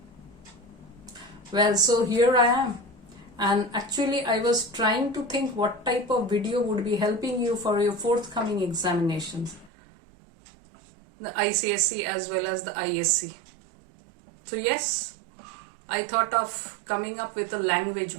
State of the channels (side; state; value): left; drops out; at 9.7 s